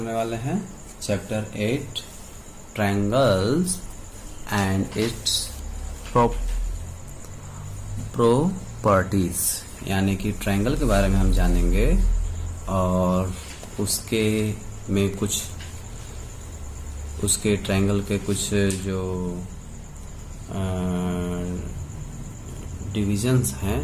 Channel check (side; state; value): both; identical; correlation 1.00